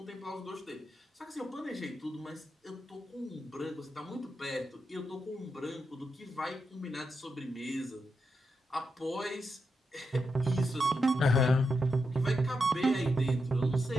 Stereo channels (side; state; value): both; normal; correlation 0.85